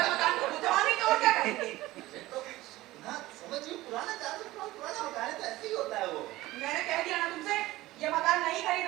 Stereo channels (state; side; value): quieter; left; 17.6 dB